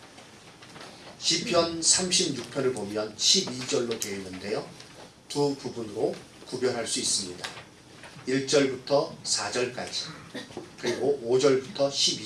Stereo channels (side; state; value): both; identical; correlation 1.00